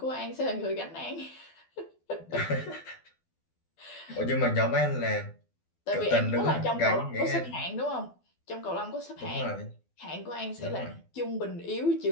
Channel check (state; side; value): late; right; 12 ms